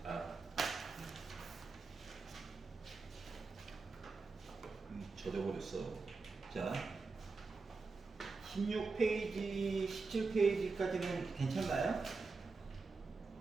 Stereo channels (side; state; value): left; quieter; 4.2 dB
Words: 젖어버렸어. 자, 16페이지, 17페이지까지는 괜찮나요?